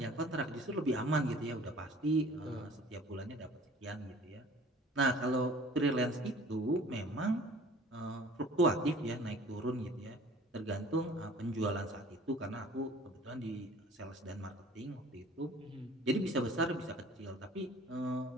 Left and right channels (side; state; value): both; normal; correlation 0.49